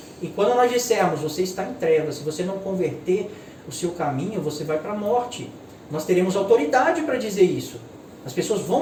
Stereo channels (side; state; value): both; identical; correlation 1.00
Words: E quando nós dissermos, você está em trevas, se você não converter o seu caminho, você vai para a morte. Nós teremos autoridade para dizer isso. As pessoas